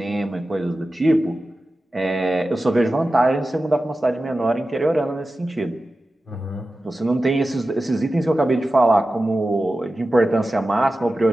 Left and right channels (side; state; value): both; normal; correlation 0.94